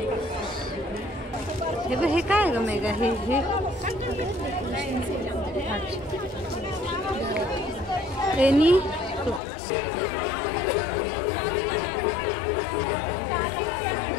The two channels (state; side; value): drops out; right; at 9.4 s